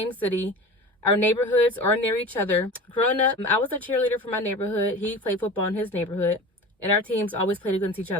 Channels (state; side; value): normal; both; correlation 0.35